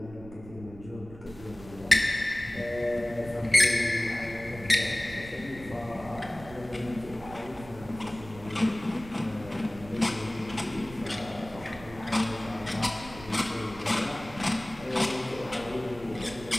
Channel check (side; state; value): right; noise; rumble, 17 dB below the sound